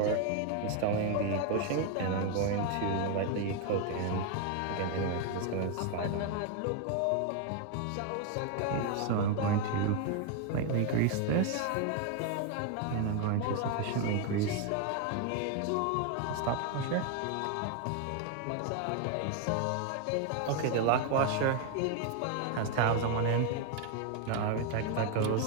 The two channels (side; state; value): both; different; correlation 0.01